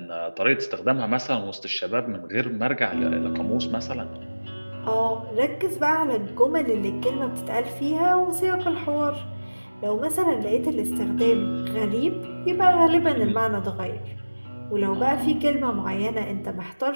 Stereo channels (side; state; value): both; inverted; correlation -1.00